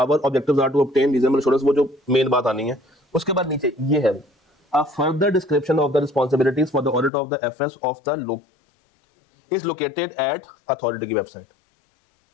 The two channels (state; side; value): drops out; right; at 7.1 s